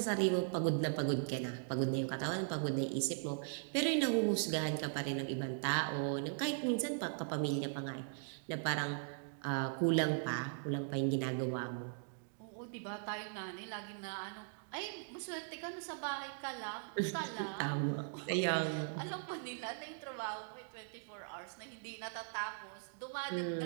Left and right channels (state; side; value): silent; left; digital silence